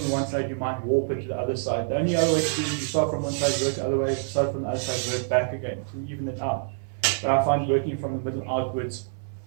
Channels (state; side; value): silent; left; 58 dB below the other